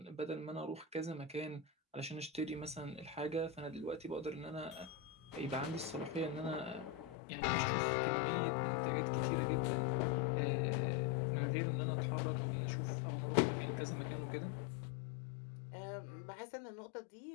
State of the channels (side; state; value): right; drops out; at 7.2 s